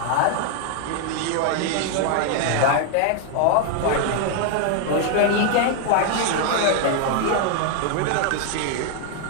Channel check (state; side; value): different; both; correlation 0.00